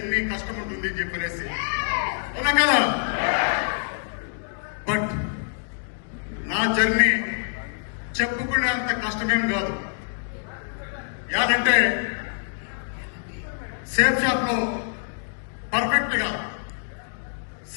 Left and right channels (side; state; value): right; silent; digital silence